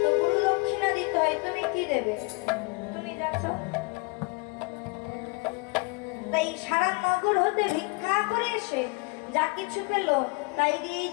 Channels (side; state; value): right; quieter; 29.9 dB